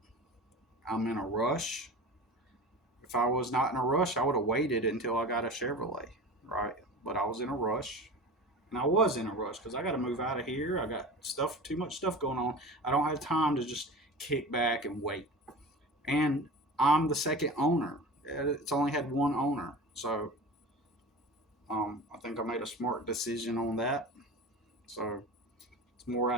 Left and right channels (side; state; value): both; normal; correlation 0.33